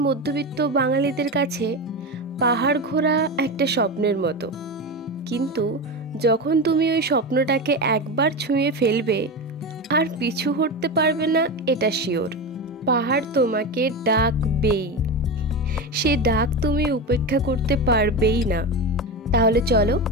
মধ্যবিত্ত বাঙালিদের কাছে পাহাড় ঘোরা একটা স্বপ্নের মতো। কিন্তু যখন তুমি ওই স্বপ্নটাকে একবার ছুঁয়ে ফেলবে আর পিছু হটতে পারবে না, এটা শিওর। পাহাড় তোমাকে ডাকবেই, সে ডাক তুমি উপেক্ষা করতে পারবেই না। তাহলে চলো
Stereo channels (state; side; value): normal; both; correlation 0.20